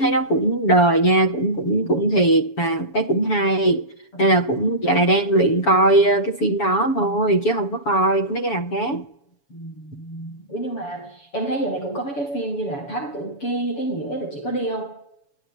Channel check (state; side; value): late; right; 7.1 ms